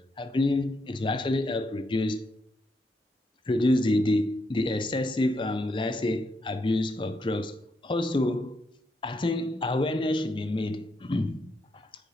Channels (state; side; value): normal; both; correlation 0.79